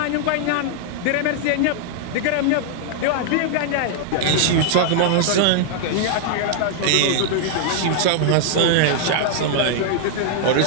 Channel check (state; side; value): different; both; correlation -0.01